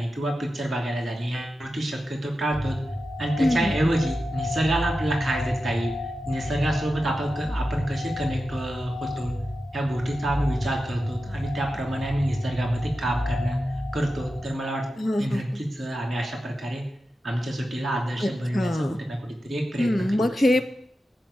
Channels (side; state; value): both; normal; correlation 0.91